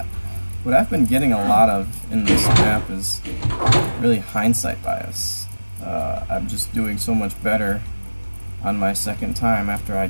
what I've been getting a lot of in this map is really hindsight bias. I'm just doing so much better on my second time after I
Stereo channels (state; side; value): inverted; both; correlation -1.00